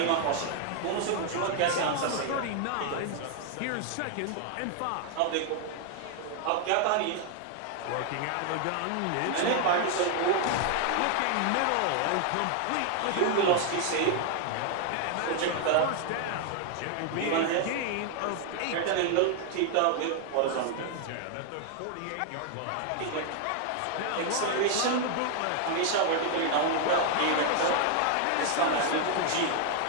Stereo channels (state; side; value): different; both; correlation 0.00